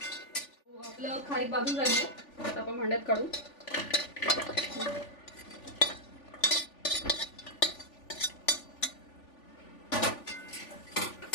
आपलं खारीक भाजून झाली आहे. आता आपण भांड्यात काढू.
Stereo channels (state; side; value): late; right; 3.5 ms